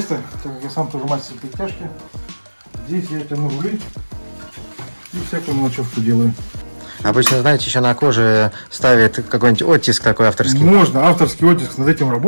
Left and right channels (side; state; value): both; inverted; correlation -1.00